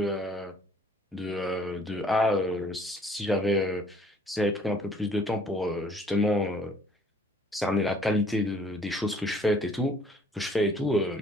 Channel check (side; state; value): both; normal; correlation 0.58